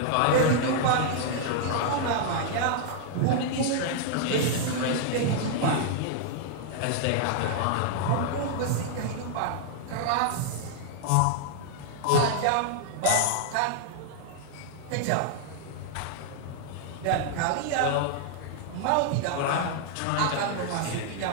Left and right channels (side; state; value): both; different; correlation -0.01